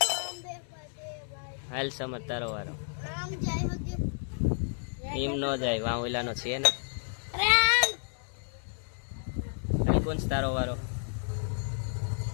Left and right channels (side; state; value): right; silent; 57 dB below the other